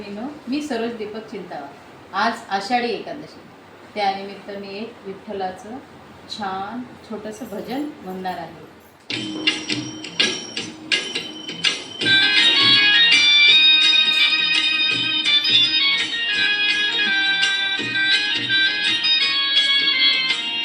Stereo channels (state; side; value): identical; both; correlation 1.00